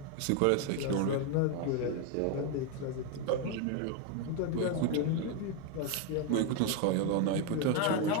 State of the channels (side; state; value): both; different; correlation 0.01